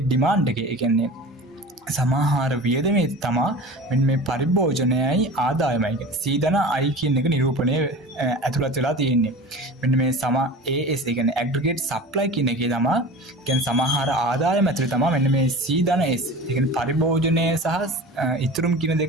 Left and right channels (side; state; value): both; normal; correlation 0.36